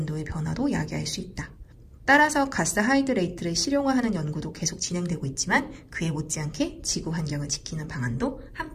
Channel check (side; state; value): both; identical; correlation 1.00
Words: 변화도 야기할 수 있다. 따라서 가스 하이드레이트를 실용화하는 연구도 계속 진행되고 있지만 그에 못지않게 지구 환경을 지키는 방안도